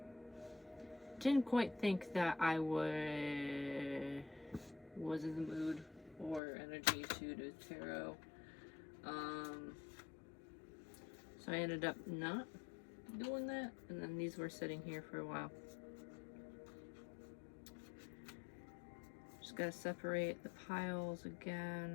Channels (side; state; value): right; drops out; at 6.4 s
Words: didn't quite think that I was in the mood or energy to do tarot. So I ended up not doing that, and then these were sitting here for a while. Just gotta separate the piles